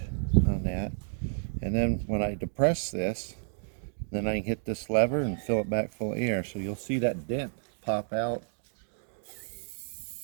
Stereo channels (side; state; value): left; silent; digital silence